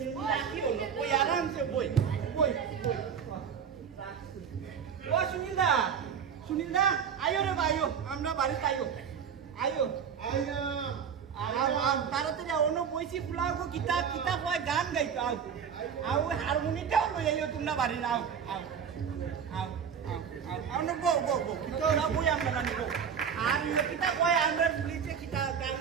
রাখি হলো বই আরামসে বই বই বই ও সুনীল দা আয়ো রে ভাইও আমরা বাড়িতে আয়ো আয়ো আইনা তাড়াতাড়ি অন্য বইছি ফুলাও কিতা কিতা কয় গান গাইতো আও আও হারমোনিটাও লই আইও তোমরা বাড়ি আও আও আও আও না গো গো গো কিতা না বই আমরা জানি গো আর কিতা কয় আমরা পুলিশে কিতা গান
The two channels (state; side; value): quieter; left; 7.3 dB